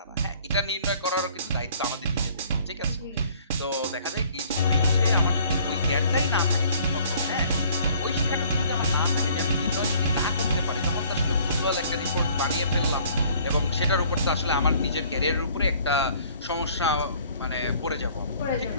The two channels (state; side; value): inverted; both; correlation -0.56